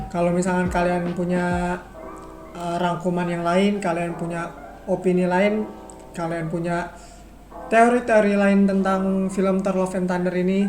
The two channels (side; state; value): both; identical; correlation 1.00